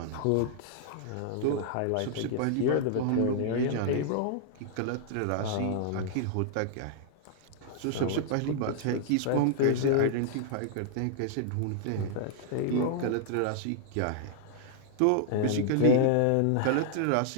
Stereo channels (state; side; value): different; both; correlation -0.01